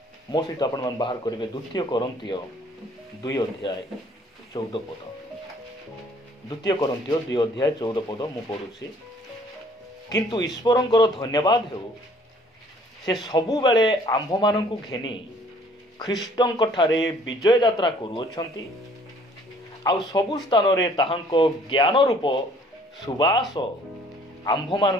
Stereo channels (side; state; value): both; normal; correlation 0.58